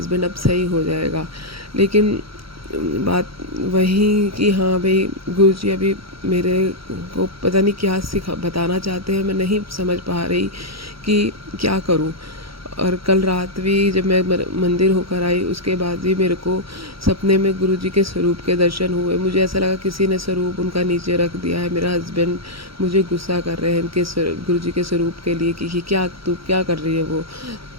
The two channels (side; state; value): left; late; 0.75 ms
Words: अब सही हो जाएगा। लेकिन बात वही कि हाँ भाई, गुरुजी अभी मेरे को पता नहीं क्या बताना चाहते हैं, मैं नहीं समझ पा रही कि क्या करूं। और कल रात भी जब मैं मंदिर होकर आई, उसके बाद भी मेरे को सपने में गुरुजी के स्वरूप के दर्शन हुए। मुझे ऐसा लगा किसी ने स्वरूप उनका नीचे रख दिया है। मेरा हस्बैंड मुझे गुस्सा कर रहे हैं इनके गुरुजी के स्वरूप के लिए कि क्या तू क्या कर रही है वो,